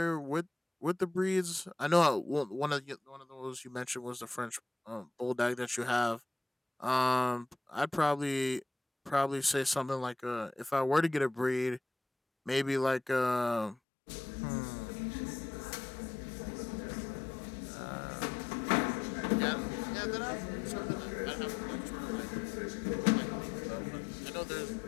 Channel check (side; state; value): right; drops out; at 13.8 s